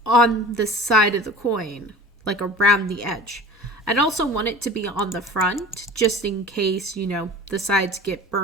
on the side of the coin, like around the edge. I'd also want it to be on the front, just in case, you know, the sides get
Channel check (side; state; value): both; normal; correlation 0.39